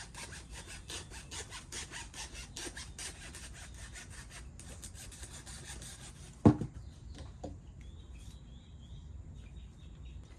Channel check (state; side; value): identical; both; correlation 1.00